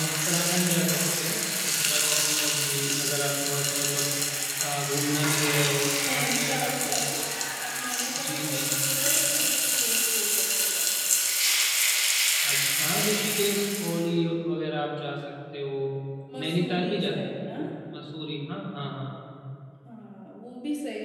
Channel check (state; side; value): identical; both; correlation 1.00